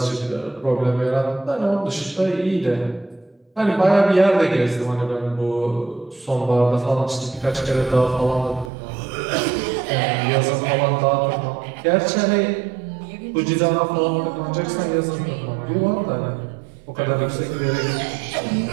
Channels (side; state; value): left; drops out; at 8.7 s